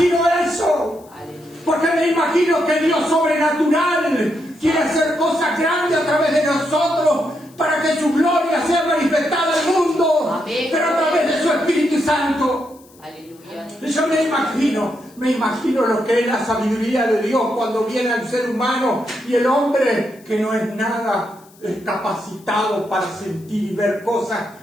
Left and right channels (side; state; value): left; noise; hiss, 28 dB below the sound